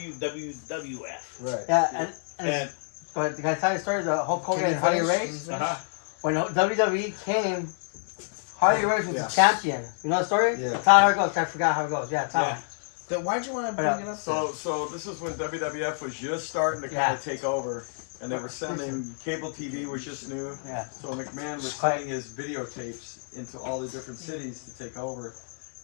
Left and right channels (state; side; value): silent; right; 57 dB below the other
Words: Right. Yeah, and And but can I tell you a story of the Hulk Hogan Can you and Harley finish? Race? uh-huh. When WWE came, Harley Race was Yeah. the champion. You know the story? Yeah. Tell how it goes. I forgot how it goes. Yeah, tell Yeah. me. Then why'd you want to bring it up? So this is when WWF was just starting to kind of take over, and they were sending cable TV was just new. Yeah. So McMahon was sending his videotapes into all the different cities to take over,